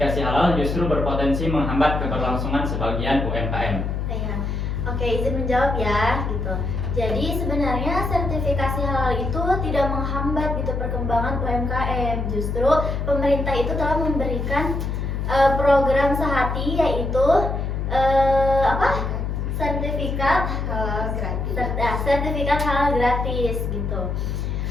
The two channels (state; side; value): noise; left; hum, 2 dB below the sound